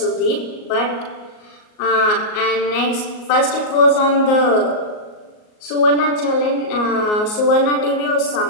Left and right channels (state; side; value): late; right; 38 ms